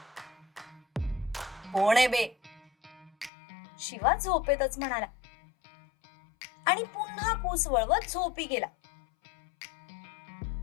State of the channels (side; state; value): right; drops out; at 3.3 s